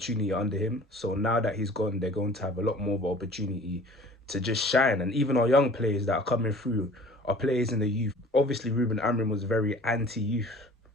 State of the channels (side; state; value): both; normal; correlation 0.47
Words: under him. So now that he's gone, they're going to have a lot more of an opportunity to just shine. And even our young players that are coming through are players in the youth. Obviously, Ruben Amorim was very anti-youth,